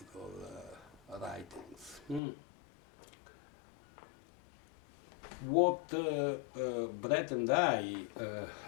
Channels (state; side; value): drops out; right; at 2.2 s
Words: writings. What Brett and I